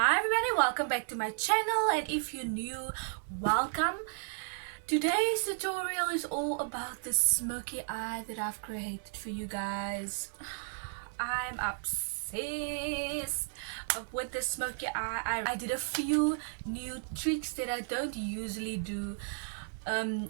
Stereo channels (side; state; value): left; silent; 55 dB below the other